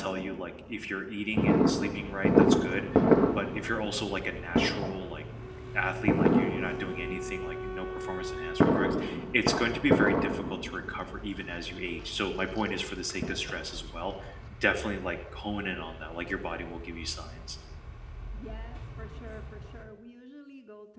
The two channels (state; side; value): identical; both; correlation 1.00